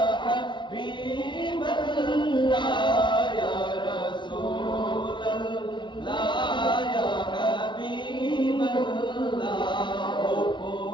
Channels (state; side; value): late; right; 0.23 ms